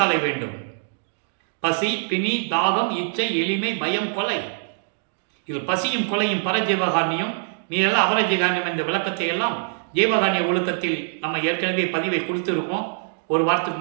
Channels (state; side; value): silent; left; digital silence